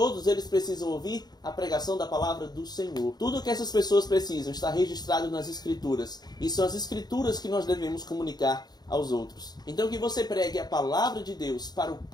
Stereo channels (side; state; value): right; late; 0.20 ms